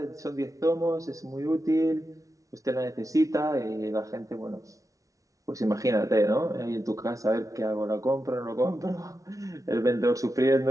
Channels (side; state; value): left; late; 0.17 ms